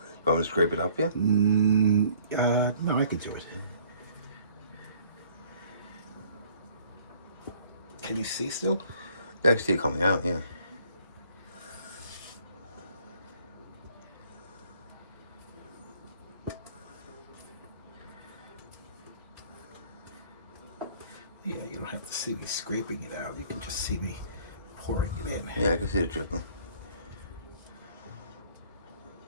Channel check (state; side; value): inverted; both; correlation -0.57